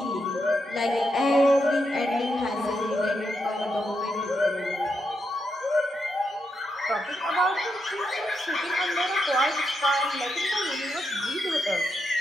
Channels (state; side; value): normal; both; correlation 0.83